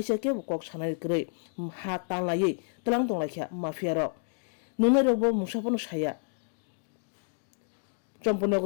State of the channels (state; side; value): silent; right; digital silence